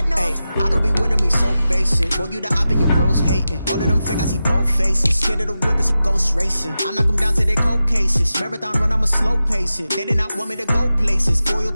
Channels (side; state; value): both; inverted; correlation -0.92